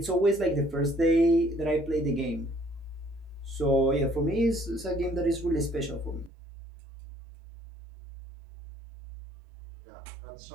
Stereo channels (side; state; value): left; drops out; at 6.3 s